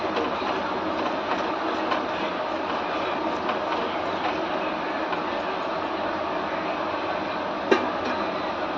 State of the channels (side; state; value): both; identical; correlation 1.00